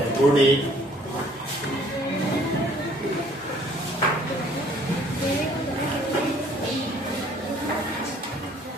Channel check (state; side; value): normal; both; correlation 0.59